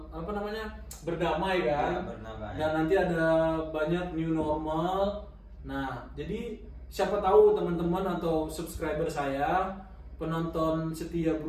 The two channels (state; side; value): identical; both; correlation 1.00